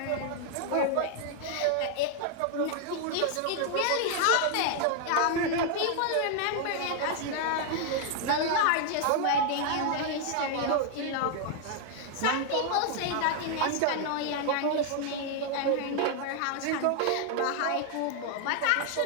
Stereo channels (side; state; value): both; different; correlation 0.00